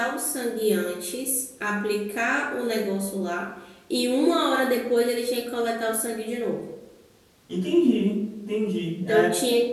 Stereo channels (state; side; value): identical; both; correlation 1.00